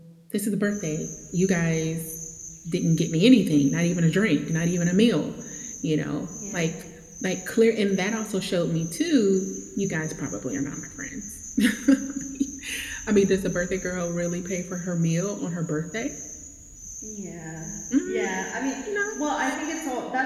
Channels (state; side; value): identical; both; correlation 1.00